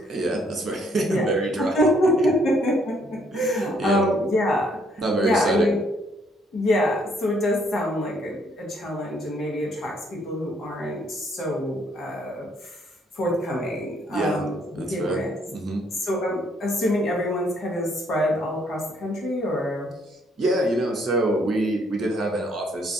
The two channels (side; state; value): both; normal; correlation 0.68